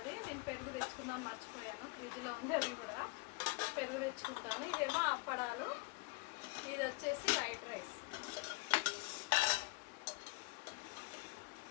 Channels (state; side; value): quieter; right; 28.3 dB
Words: నేను పెరుగు తెచ్చుకుందాం మర్చిపోయాను, ఫ్రిడ్జ్లో ఉంది, అది కూడా పెరుగు తెచ్చుకుంటాను. ఇదేమో అప్పడాలు, ఇది వచ్చేసి వైట్ రైస్.